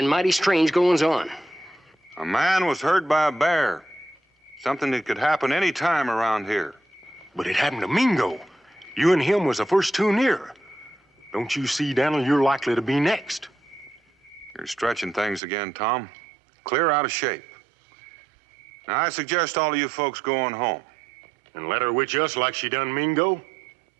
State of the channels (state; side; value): drops out; left; at 15.4 s